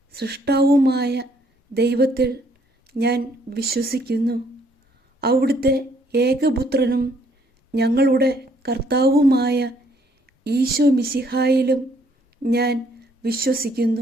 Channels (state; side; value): normal; both; correlation 0.66